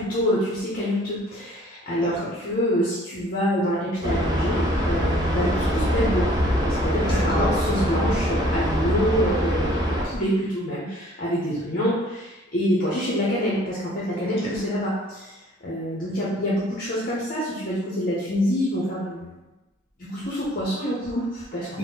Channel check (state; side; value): normal; both; correlation 0.56